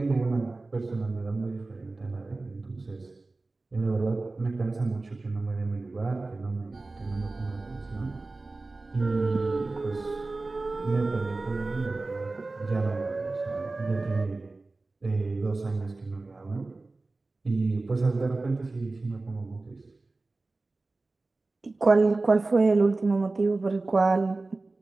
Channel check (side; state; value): left; quieter; 3.3 dB